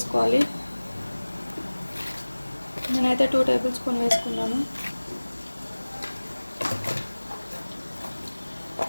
నేనైతే 2 టేబుల్ స్పూన్ వేసుకున్నాను.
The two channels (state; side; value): inverted; both; correlation -1.00